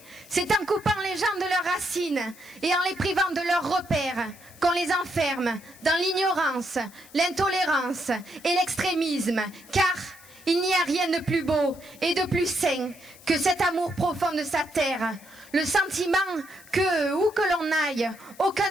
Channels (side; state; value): left; noise; hiss, 23 dB below the sound